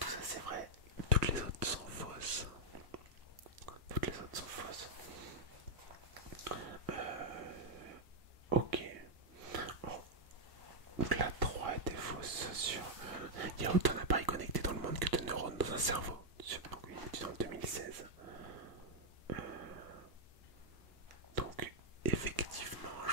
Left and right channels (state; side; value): late; left; 1.1 ms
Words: ça c'est vrai, toutes les autres sont fausses. Ok. Donc la 3 était fausse sur... Il y a autant d'appareils connectés dans le monde que de neurones dans un cerveau. Donc une étude en 2016. Donc effectivement,